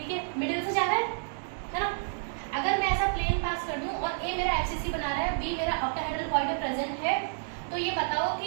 है, मिडिल से जा रहा है ना। अगर मैं ऐसा प्लेन पास कर दूं और ए मेरा एफसीसी बना रहा है, बी मेरा ऑक्टाहेड्रल वॉइड में प्रेजेंट है, तो ये बताओ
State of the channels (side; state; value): left; silent; digital silence